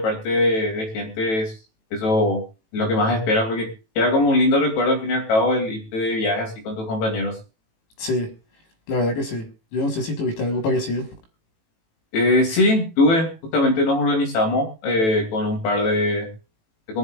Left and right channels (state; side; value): late; right; 18 ms